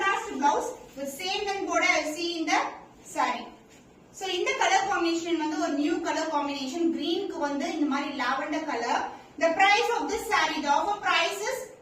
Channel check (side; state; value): both; identical; correlation 1.00